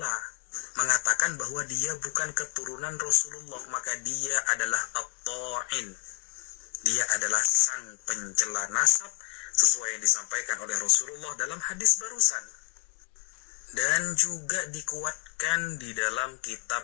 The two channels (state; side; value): quieter; right; 31.3 dB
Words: mengatakan bahwa dia bukan keturunan Rasulullah, maka dia adalah at-ta'in. Dia adalah sang pencela nasab sesuai yang disampaikan oleh Rasulullah dalam hadis barusan. Dan juga dikuatkan di dalam kitab